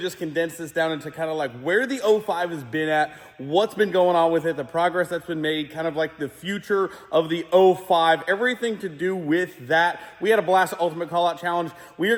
condense this down into kind of like where the 05 has been at, what's been going on with it, the progress that's been made, kind of like the future of the 05, everything to do with that. We had a blast at Ultimate Callout Challenge. We are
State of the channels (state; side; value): identical; both; correlation 1.00